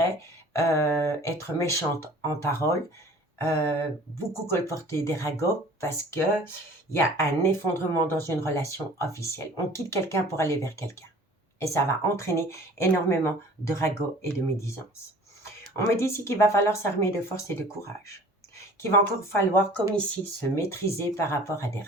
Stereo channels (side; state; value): both; normal; correlation 0.47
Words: être méchante en parole, beaucoup colporter des ragots parce qu'il y a un effondrement dans une relation officielle. On quitte quelqu'un pour aller vers quelqu'un. Et ça va entraîner énormément de ragots et de médisance. On me dit ici qu'il va falloir s'armer de force et de courage. Qu'il va encore falloir, comme ici, se maîtriser par rapport à des